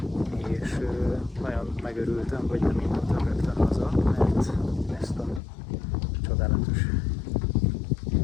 És nagyon megörültem, hogy nem indultam rögtön haza, mert ezt a csodálatos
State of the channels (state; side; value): drops out; right; at 5.4 s